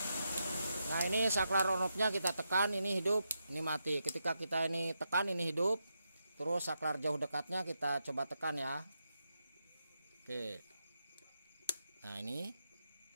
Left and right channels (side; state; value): both; inverted; correlation -0.85